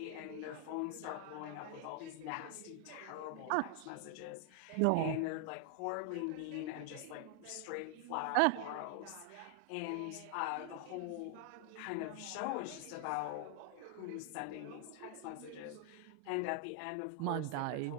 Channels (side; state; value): both; different; correlation 0.00